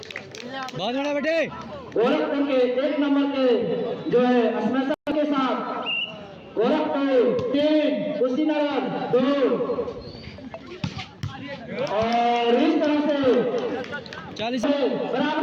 बहुत बड़ा बेटे गोरखपुर के 1 नंबर के जो है स्मैशर के साथ गोरखपुर 3 कुशीनगर 2 और इस तरह से 40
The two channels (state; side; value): identical; both; correlation 1.00